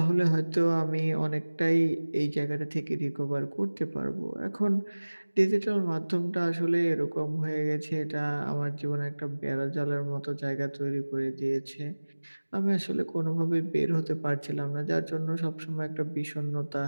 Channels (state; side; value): inverted; both; correlation -1.00